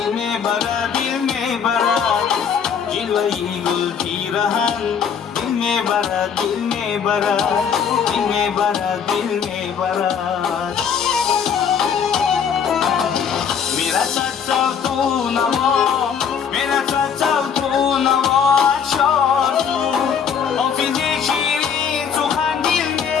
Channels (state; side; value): quieter; right; 7.2 dB